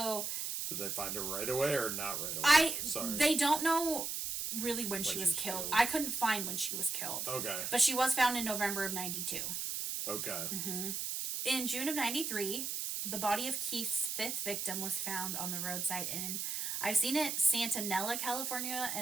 Did they find her right away or not right away? They don't know really when she was killed. I couldn't find when she was killed. Okay. But she was found in November of 92. Okay. Mm-hmm. In June of 93, the body of Keith's fifth victim was found on the roadside in, I've seen it, Santanella, California,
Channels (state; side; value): noise; right; hiss, 2 dB below the sound